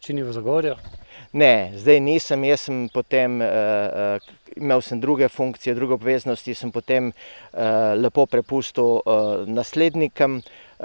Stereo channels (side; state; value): both; inverted; correlation -1.00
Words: v Zagorju? Ne, zdaj nisem, jaz sem potem, imel sem druge funkcije, druge obveznosti, sem potem lepo prepustil naslednikom,